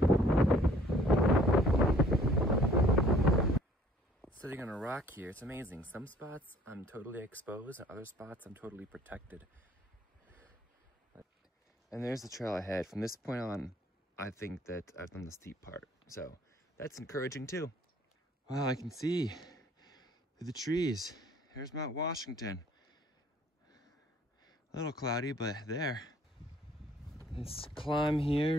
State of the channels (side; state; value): both; normal; correlation 0.57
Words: Sitting on a rock here, it's amazing. Some spots I'm totally exposed, other spots I'm totally protected. And there's the trail ahead. From this point on, I think that I've done the steep part. So that's encouraging too. Wow, I can see through the trees. There's Mount Washington. A little cloudy, but there. This climb here